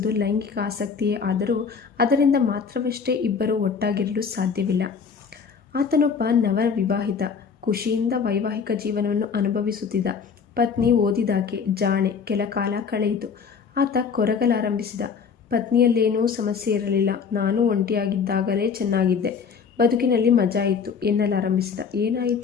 ಲೈಂಗಿಕ ಆಸಕ್ತಿಯೇ ಆದರೂ ಅದರಿಂದ ಮಾತ್ರವಷ್ಟೇ ಇಬ್ಬರು ಒಟ್ಟಾಗಿರಲು ಸಾಧ್ಯವಿಲ್ಲ. ಆತನೊಬ್ಬ ನವವಿವಾಹಿತ, ಖುಷಿಯಿಂದ ವೈವಾಹಿಕ ಜೀವನವನ್ನು ಅನುಭವಿಸುತ್ತಿದ್ದ. ಪತ್ನಿ ಓದಿದಾಕೆ, ಜಾಣೆ. ಕೆಲ ಕಾಲ ಕಳೆಯಿತು. ಆತ ಕೊರಗಲಾರಂಭಿಸಿದ. ಪತ್ನಿಯಲ್ಲೇನೂ ಸಮಸ್ಯೆ ಇರಲಿಲ್ಲ. ನಾನು ಒಂಟಿಯಾಗಿದ್ದಾಗಲೇ ಚೆನ್ನಾಗಿದ್ದೆ, ಬದುಕಿನಲ್ಲಿ ಮಜಾ ಇತ್ತು ಎನ್ನಲಾರಂಭಿಸಿದ.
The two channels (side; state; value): right; quieter; 6.0 dB